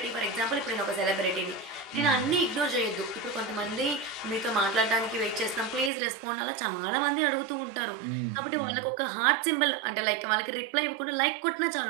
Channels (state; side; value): drops out; left; at 5.9 s